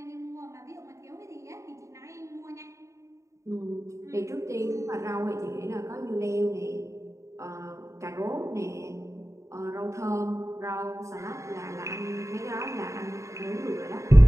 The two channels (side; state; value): left; late; 0.14 ms